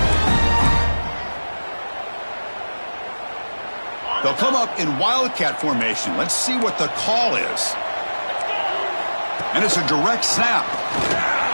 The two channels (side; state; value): both; inverted; correlation -1.00